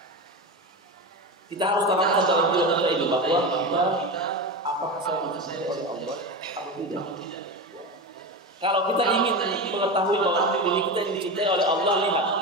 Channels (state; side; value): normal; both; correlation 0.22